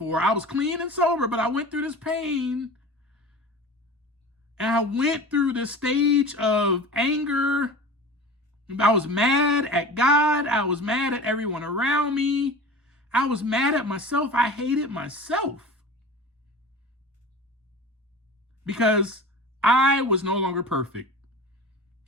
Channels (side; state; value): both; normal; correlation 0.36